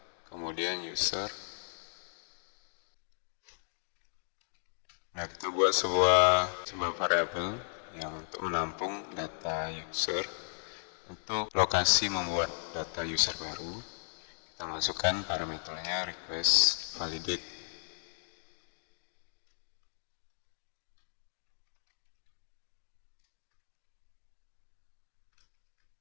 kemudian user. Nah, kita buat sebuah variabel yang untuk menampung data user. Untuk lokasi membuat data user baru, kita masukkan parameternya request validate.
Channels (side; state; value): right; silent; digital silence